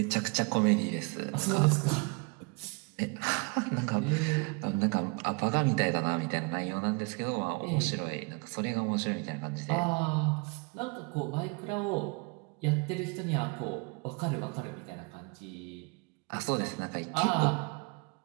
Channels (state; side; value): quieter; left; 31.4 dB